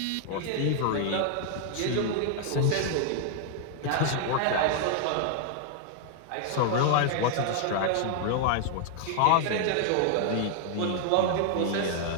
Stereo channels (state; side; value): different; both; correlation 0.00